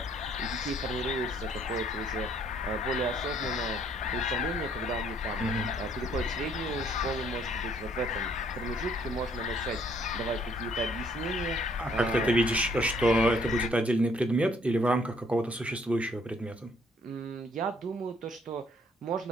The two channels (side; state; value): both; normal; correlation 0.64